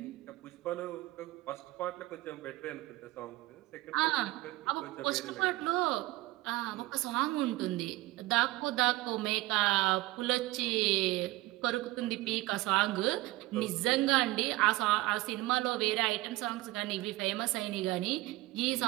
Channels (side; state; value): left; quieter; 18.9 dB